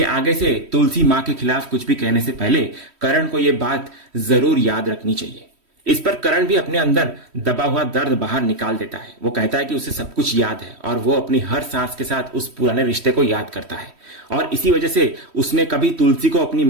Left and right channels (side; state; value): left; late; 3.1 ms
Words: आगे से तुलसी माँ के खिलाफ कुछ भी कहने से पहले करण को यह बात जरूर याद रखनी चाहिए। इस पर करण भी अपने अंदर दबा हुआ दर्द बाहर निकाल देता है। वो कहता है कि उसे सब कुछ याद है और वो अपनी हर सांस के साथ उस पुराने रिश्ते को याद करता है और इसी वजह से उसने कभी तुलसी को अपनी